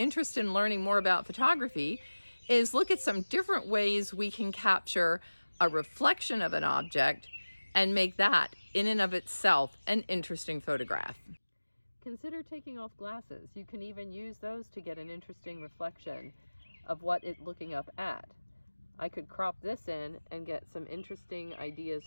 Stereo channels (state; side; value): inverted; both; correlation -1.00